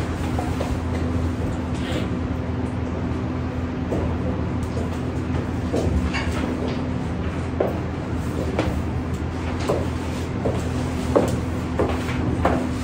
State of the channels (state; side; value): identical; both; correlation 1.00